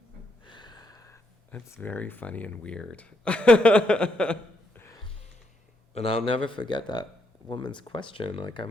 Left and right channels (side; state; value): both; normal; correlation 0.77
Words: That's very funny and weird. And I'll never forget that woman's question. Like,